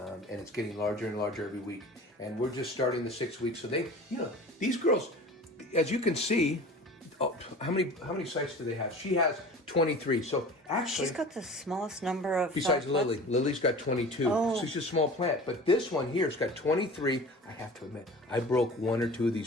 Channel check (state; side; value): normal; both; correlation 0.39